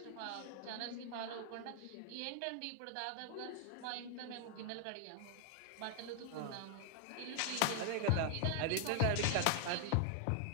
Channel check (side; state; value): both; different; correlation 0.00